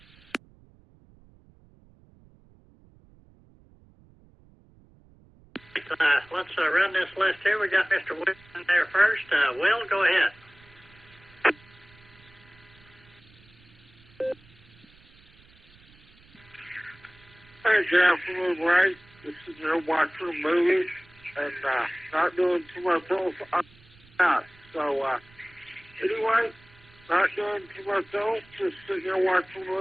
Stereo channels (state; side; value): noise; right; rumble, 27 dB below the sound